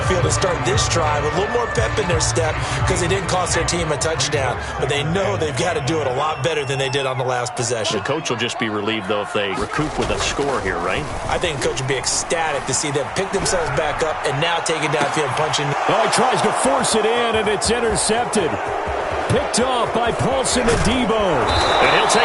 field and start this drive. A little more pep in their step because they didn't cost their team a touchdown. But they know they've got to do it a lot better than they did on the last possession. The coach will just be relieved, though, if they recoup with a score here, right? I think the coach would be ecstatic to see them pick themselves back up and now take it downfield, punching. Oh, he tries to force it in, and it's intercepted. Picked off by Paulson Adebo. And he'll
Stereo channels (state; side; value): identical; both; correlation 1.00